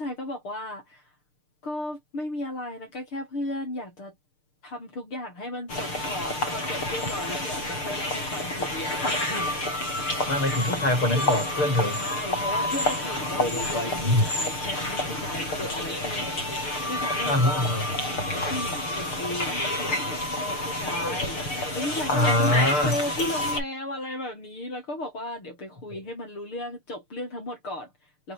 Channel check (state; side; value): late; right; 6.7 ms